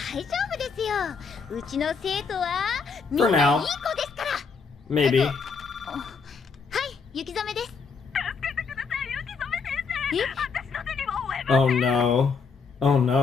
夫ですよ。うちの生徒はみん For ないい now. 子ですから。 Maybe. はい、雪染めです。え？ Oh no. Oh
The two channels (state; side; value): quieter; right; 5.2 dB